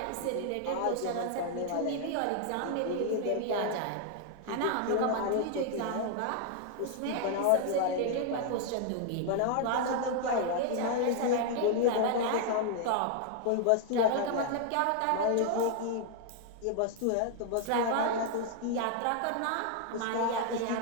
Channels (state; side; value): different; both; correlation 0.00